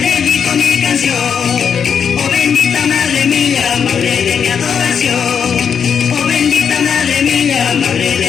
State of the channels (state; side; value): quieter; right; 7.2 dB